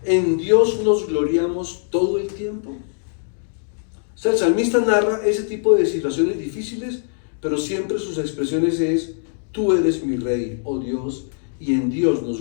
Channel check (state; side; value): silent; right; digital silence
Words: en Dios nos gloriamos todo el tiempo. O sea, el salmista narra ese tipo de situaciones difíciles, pero siempre sus expresiones es, tú eres mi Rey, oh Dios, y en Dios